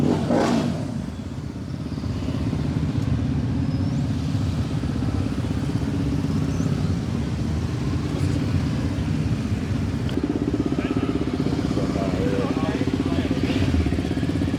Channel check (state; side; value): identical; both; correlation 1.00